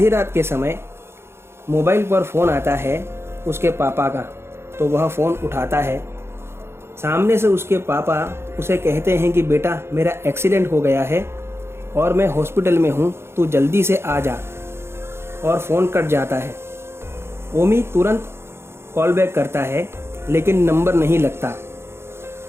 रात के समय मोबाइल पर फ़ोन आता है उसके पापा का, तो वह फ़ोन उठाता है। सामने से उसके पापा उसे कहते हैं कि बेटा, मेरा एक्सीडेंट हो गया है और मैं हॉस्पिटल में हूँ, तू जल्दी से आ जा। और फ़ोन कट जाता है। ओमी तुरंत कॉल बैक करता है लेकिन नंबर नहीं लगता।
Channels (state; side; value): late; left; 0.12 ms